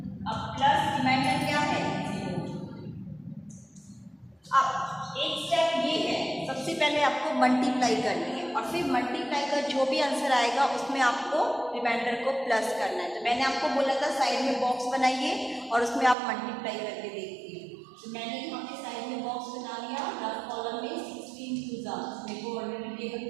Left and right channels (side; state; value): left; drops out; at 16.2 s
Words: अब प्लस रिमाइंडर क्या है 0। अब एक स्टेप ये है, सबसे पहले आपको मल्टीप्लाई करनी है और फिर मल्टीप्लाई का जो भी आंसर आएगा उसमें आपको रिमाइंडर को प्लस करना है। तो मैंने आपको बोला था साइड में बॉक्स बनाइए और उसमें आप मल्टीप्लाई करके देखिए। तो मैंने यहाँ पे साइड में बॉक्स बना लिया, रफ कॉलम में 16 × 2 मेरे को ऑलरेडी टेबल